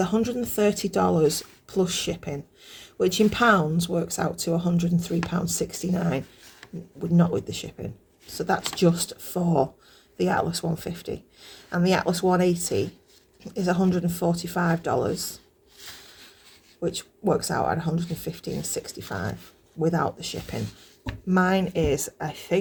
plus shipping, which in pounds works out to £103.69, not with the shipping. So that's just for the Atlas 150. And the Atlas 180 is $145, which works out at $115.65 without the shipping. Mine is, I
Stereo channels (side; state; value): both; identical; correlation 1.00